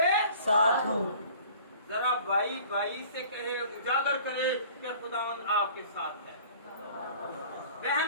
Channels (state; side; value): inverted; both; correlation -0.48